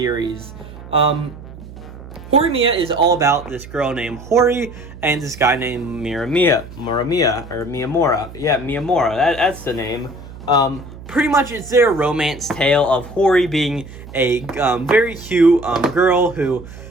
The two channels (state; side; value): noise; right; hum, 15 dB below the sound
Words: Horimiya is all about this girl named Hori and this guy named Miyamura. Yeah, Miyamura. That's the name. Pretty much it's their romance tale of Hori being a very cute girl who